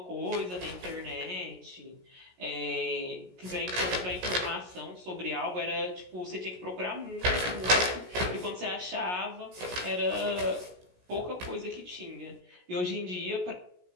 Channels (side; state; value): left; late; 16 ms